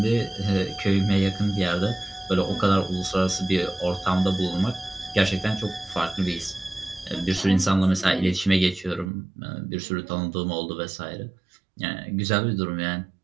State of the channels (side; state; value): left; drops out; at 9.1 s